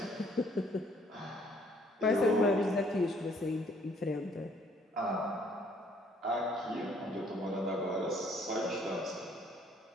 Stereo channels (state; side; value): normal; both; correlation 0.63